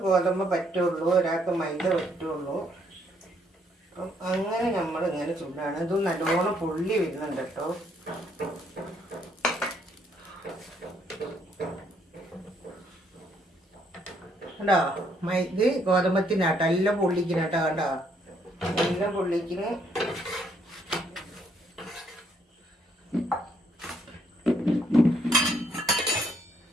ഗോതമ്പ് പറ്റുള്ളൂ, ഒരാൾക്ക് മൈദ പറ്റുള്ളൂ. അപ്പം അങ്ങനെ നമ്മൾ ഇങ്ങനെ ചുടാണ്. ഇത് നല്ലോണം പൊള്ളി വരുന്നുണ്ട് കേട്ടോ. കണ്ടോ, ഇത് ഗോതമ്പത്തിനാട്ടോ. എല്ലാം പൊള്ളിക്കണട്ടോ. കണ്ടോ, എല്ലാം പൊള്ളിക്കണ്.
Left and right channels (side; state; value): both; normal; correlation 0.70